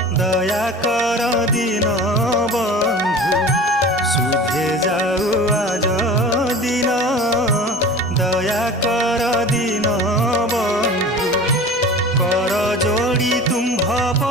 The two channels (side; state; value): both; normal; correlation 0.38